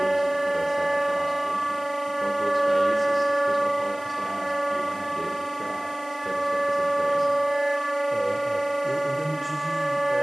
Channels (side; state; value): right; noise; hiss, 24 dB below the sound